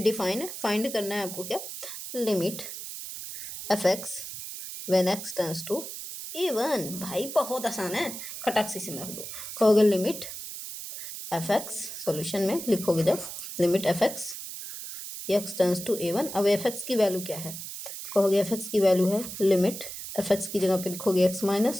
है, फाइंड करना है आपको क्या, limit fx when x tends to A1। भाई बहुत आसान है, खटाक से रख दो, कहोगे लिमिट fx, सॉल्यूशन में लिखोगे जब limit fx x tends to A1। अब fx की वैल्यू क्या है, कहोगे fx की वैल्यू है लिमिट fx की जगह पे लिखोगे x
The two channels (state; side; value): noise; right; hiss, 9 dB below the sound